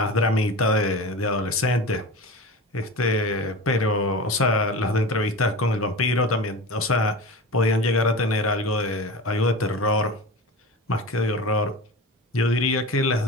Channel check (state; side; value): normal; both; correlation 0.30